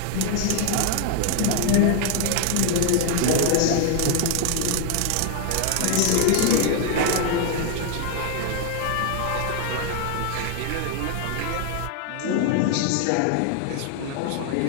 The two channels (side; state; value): both; different; correlation 0.00